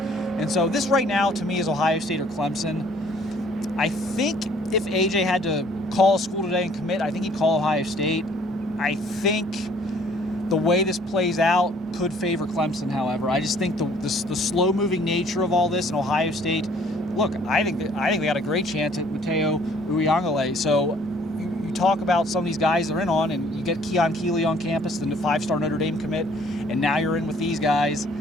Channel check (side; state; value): both; normal; correlation 0.59